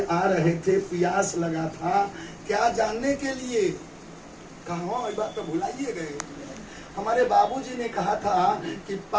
आ रहे थे, प्यास लगा था, क्या जानने के लिए? कहा ये बात तो भुलाइए गए। हमारे बाबूजी ने कहा था कि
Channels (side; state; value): both; identical; correlation 1.00